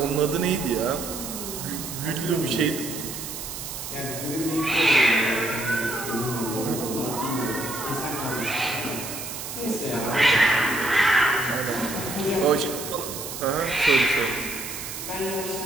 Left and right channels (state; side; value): noise; right; hiss, 8 dB below the sound